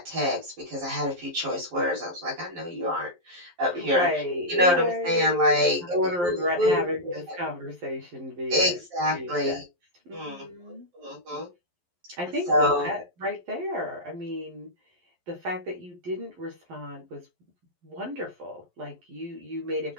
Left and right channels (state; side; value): late; left; 11 ms